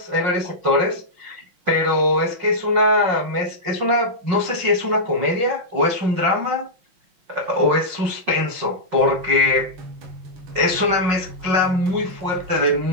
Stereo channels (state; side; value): late; left; 5.5 ms